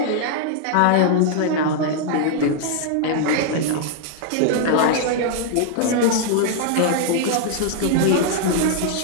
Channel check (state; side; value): different; both; correlation -0.01